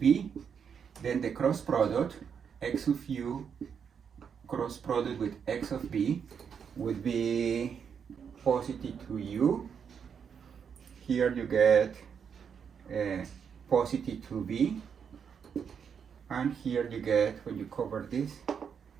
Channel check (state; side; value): quieter; left; 7.1 dB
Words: Then the cross product, x of u cross product with x of b would be positive 2u. Here you get positive 2b. And here you get, when you cover this,